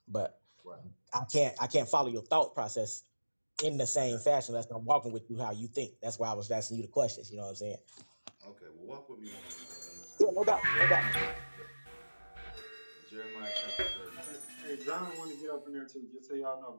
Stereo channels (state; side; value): inverted; both; correlation -1.00